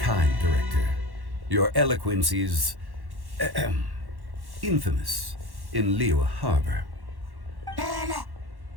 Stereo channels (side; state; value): left; late; 1.1 ms